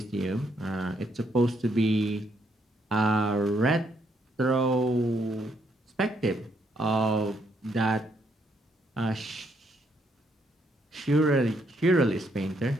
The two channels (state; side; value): normal; both; correlation 0.73